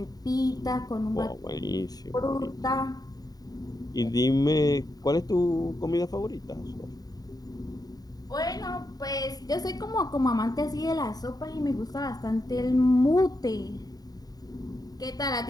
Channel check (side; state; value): right; late; 0.18 ms